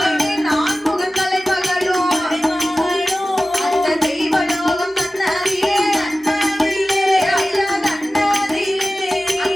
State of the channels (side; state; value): both; normal; correlation 0.96